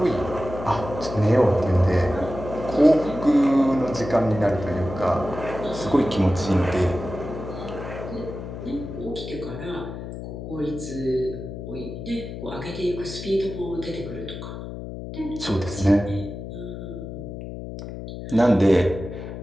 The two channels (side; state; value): left; noise; hum, 9 dB below the sound